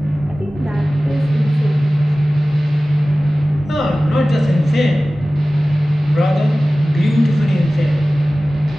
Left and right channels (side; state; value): both; normal; correlation 0.97